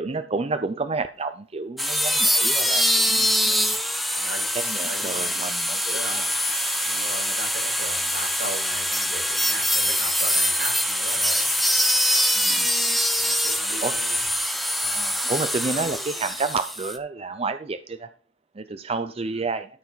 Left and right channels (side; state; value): both; normal; correlation 0.77